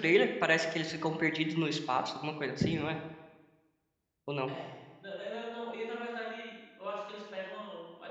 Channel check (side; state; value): both; identical; correlation 1.00